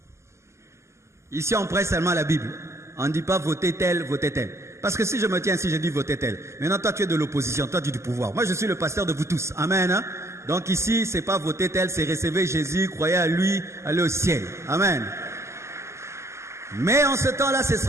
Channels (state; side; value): late; left; 0.13 ms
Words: Ici, on prête seulement la Bible. On ne dit pas votez tel, votez tel. Parce que si je me tiens ici, je dis votez tel. Maintenant, toi, tu es de l'opposition, toi, tu es du pouvoir. Moi, je suis le pasteur de vous tous. Amen, hein? Donc ici, c'est pas voter tel, c'est recevoir Jésus, croyez à lui, aller au ciel. Amen. Mais en ce temps-là, ce